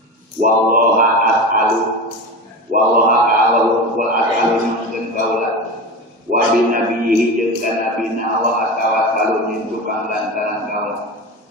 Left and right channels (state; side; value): normal; both; correlation 0.26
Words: wallaha as'alu wallaha ka'allahu wal as'alu jeung kaula wa bi nabiyhi jeung ka nabina Allah tawassalu min tukang lantaran kaula